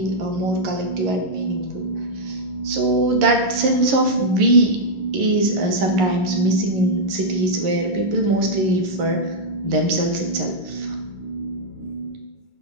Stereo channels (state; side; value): late; left; 11 ms